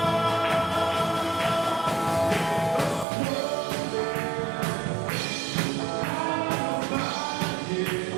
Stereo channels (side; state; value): left; drops out; at 3.1 s